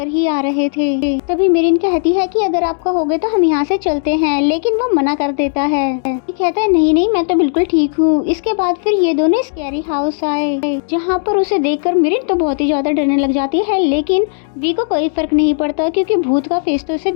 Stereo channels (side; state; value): right; silent; digital silence